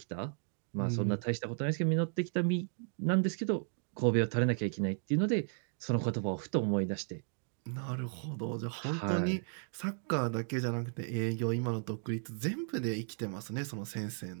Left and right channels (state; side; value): silent; left; 55 dB below the other